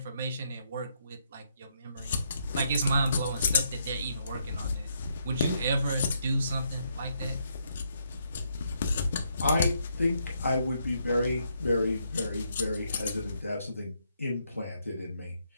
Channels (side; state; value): both; inverted; correlation -0.76